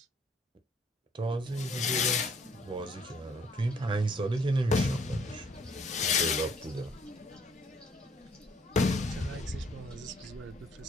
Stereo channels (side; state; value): both; normal; correlation 0.63